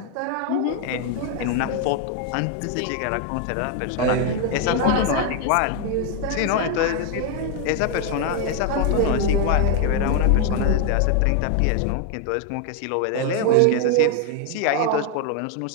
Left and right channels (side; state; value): both; different; correlation 0.00